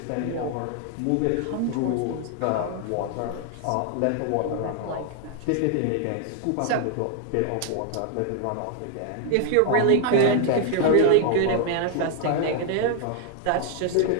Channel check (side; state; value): both; different; correlation 0.00